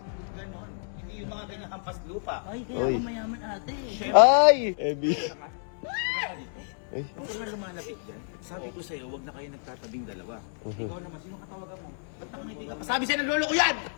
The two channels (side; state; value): right; silent; digital silence